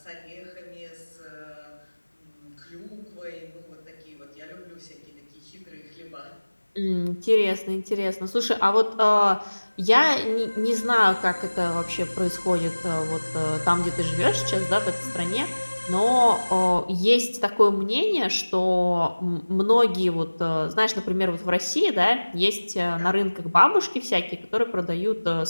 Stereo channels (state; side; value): inverted; both; correlation -1.00